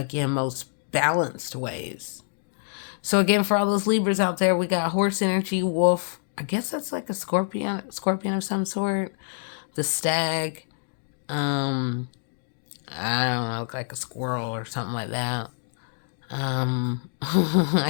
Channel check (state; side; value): silent; right; digital silence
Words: most balanced ways. So again, for all those Libras out there, we got horse energy, wolf. I guess that's like a scorpion of some sort. The stag. Um, I don't know, like a squirrel or something like that. Um,